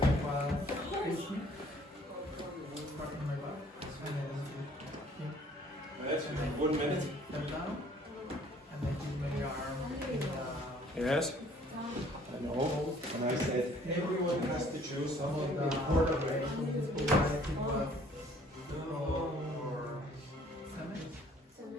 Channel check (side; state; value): both; normal; correlation 0.57